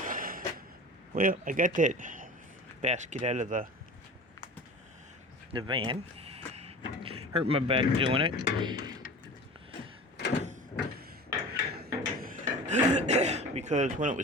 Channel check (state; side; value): normal; both; correlation 0.37